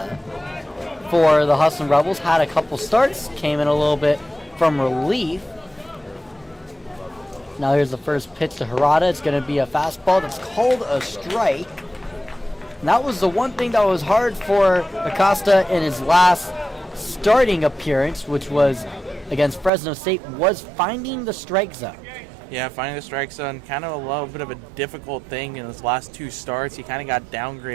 for the Hustlin Rebels. Had a couple starts, came in a little bit from relief. Now here's the first pitch to Hirata. It's going to be a fastball that's called a strike. And that was the one thing that was hard for Acosta in his last starting appearance, which was against Fresno State, was finding the strike zone. Yeah, finding the strike zone, kind of a little bit of a difficult thing in his last two starts. He kind of got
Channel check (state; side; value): drops out; left; at 19.7 s